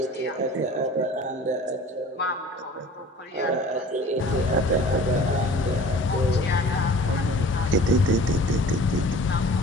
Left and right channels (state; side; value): normal; both; correlation 0.45